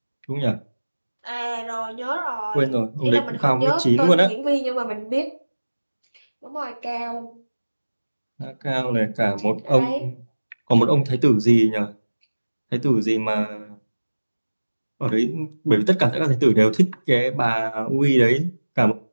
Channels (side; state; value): both; inverted; correlation -1.00